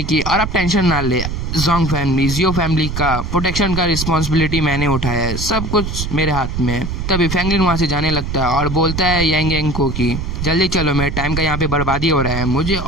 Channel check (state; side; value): noise; right; rumble, 4 dB below the sound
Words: कि और आप टेंशन ना ले, जोंग फैमिली, जियो फैमिली का प्रोटेक्शन का रिस्पॉन्सिबिलिटी मैंने उठाया है, सब कुछ मेरे हाथ में है। तभी फ्रैंकलिन वहाँ से जाने लगता है और बोलता है यांग यांग को कि जल्दी चलो, मेरे टाइम का यहाँ पे बर्बादी हो रहा है, मुझे